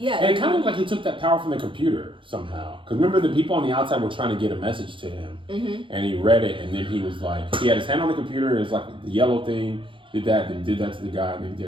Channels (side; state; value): left; late; 0.25 ms